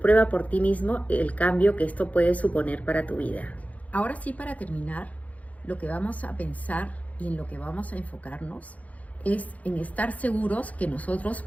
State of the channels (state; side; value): late; right; 0.070 ms